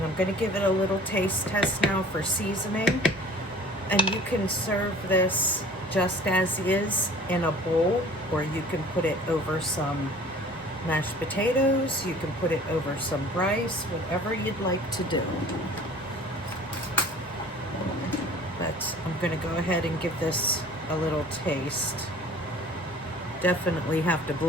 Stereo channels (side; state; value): both; normal; correlation 0.47